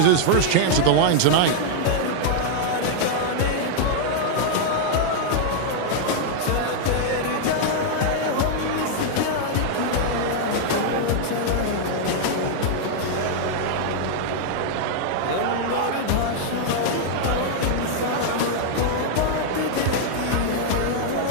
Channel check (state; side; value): different; both; correlation -0.01